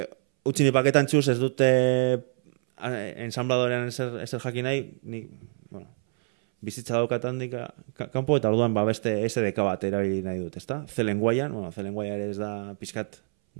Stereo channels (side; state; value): left; silent; 60 dB below the other